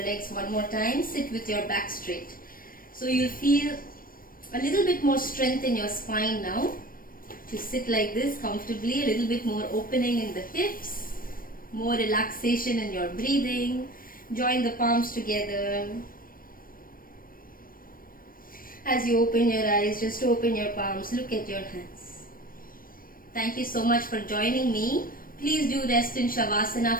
one more time, sit with your back straight. So you'll feel a little bit more strength in your spine now. To sit like this comfortably, a little bit more opening in the hips, more relaxation in your breathing. Join the palms together. As you open your eyes, just open your palms, look at your hands. Thank you so much for joining me. Please do rest in Shavasana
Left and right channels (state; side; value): late; right; 0.41 ms